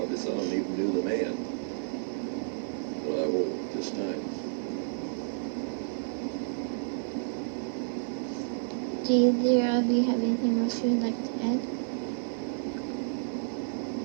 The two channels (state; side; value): silent; left; 57 dB below the other